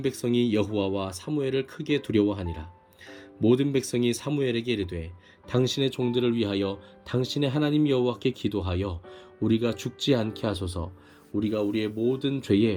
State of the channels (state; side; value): identical; both; correlation 1.00